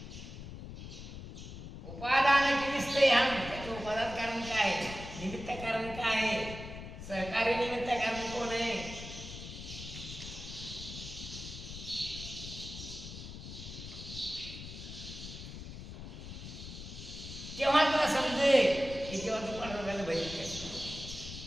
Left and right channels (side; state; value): left; noise; rumble, 11 dB below the sound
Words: उपादान दिसते हम त्याचं उपादान कारण काय? निमित्त कारण काय? सहकारी निमित्त कारण कोण आहे? तेव्हा तुला समजेल की जेव्हा तू पांडुरंगाला भजन करतो